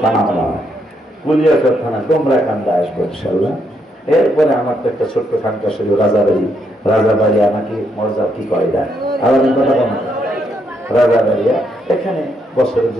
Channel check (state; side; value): normal; both; correlation 0.76